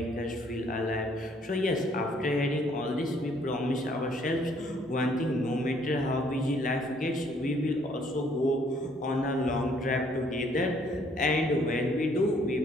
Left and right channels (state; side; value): normal; both; correlation 0.64